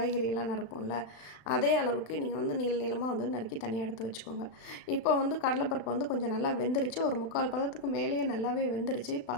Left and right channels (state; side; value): late; right; 36 ms